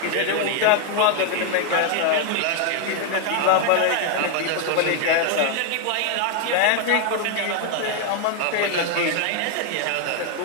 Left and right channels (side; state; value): both; different; correlation 0.01